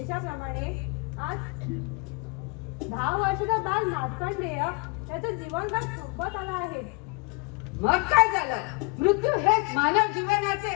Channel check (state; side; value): quieter; right; 30.2 dB